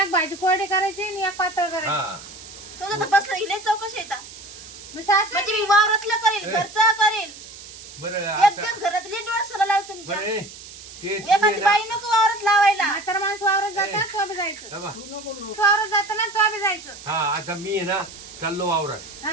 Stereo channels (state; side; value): noise; right; hiss, 16 dB below the sound